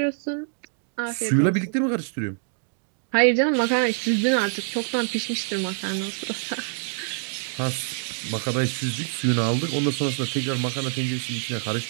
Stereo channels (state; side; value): silent; left; 61 dB below the other